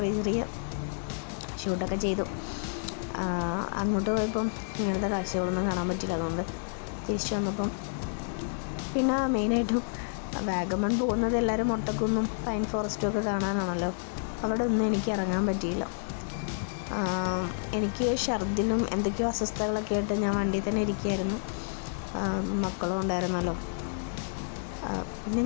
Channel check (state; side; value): silent; right; digital silence